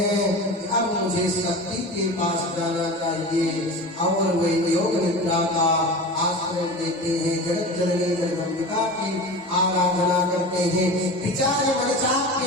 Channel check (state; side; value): normal; both; correlation 0.32